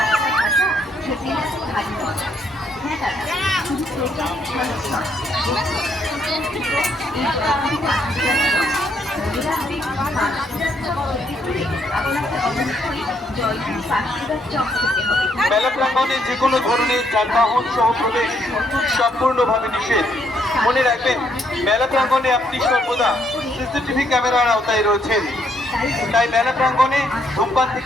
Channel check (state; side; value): normal; both; correlation 0.72